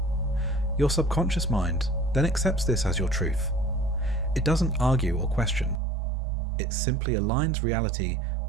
Your subconscious mind then accepts this as your truth. It doesn't argue or question. It simply aligns reality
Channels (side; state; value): left; drops out; at 5.8 s